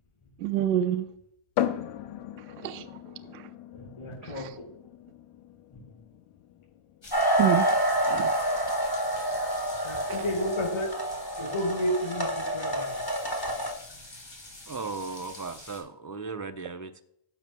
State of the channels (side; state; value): right; late; 1.2 ms